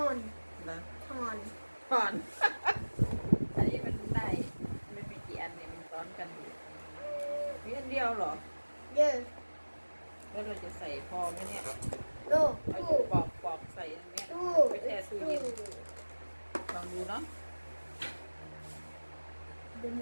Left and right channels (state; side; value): inverted; both; correlation -1.00